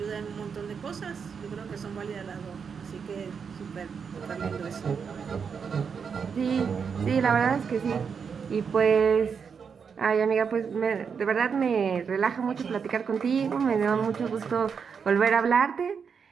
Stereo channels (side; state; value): left; quieter; 6.3 dB